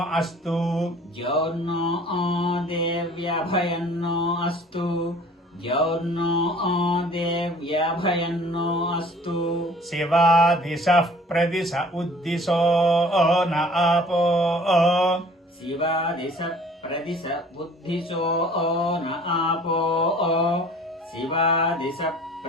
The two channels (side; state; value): both; normal; correlation 0.51